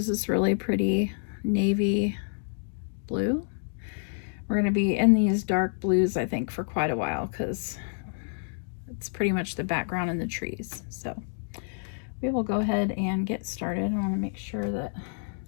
this really pretty navy blue. We're going to be in these dark blues, I think, for quite a while because it's pretty much the background in the trees. So we will go ahead and get started. I want to make sure that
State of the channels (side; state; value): right; silent; digital silence